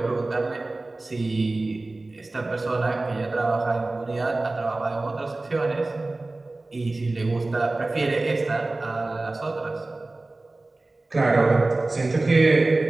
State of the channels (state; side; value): quieter; left; 3.1 dB